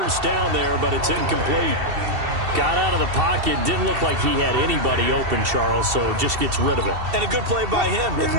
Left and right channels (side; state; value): left; late; 2.7 ms